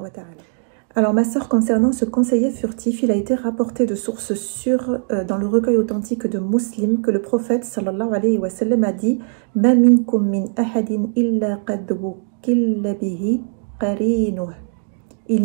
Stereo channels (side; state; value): left; silent; 66 dB below the other